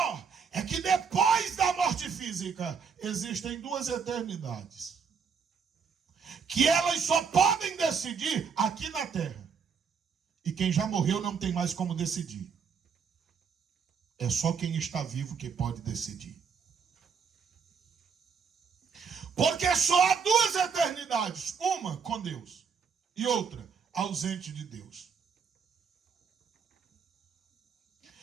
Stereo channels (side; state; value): left; quieter; 6.1 dB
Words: é que depois da morte física existem duas eternidades, que elas só podem decidir aqui na terra. E quem já morreu não tem mais como decidir. É só quem está vivo que pode decidir. Porque só há duas eternidades. Uma com Deus e outra ausente de Deus.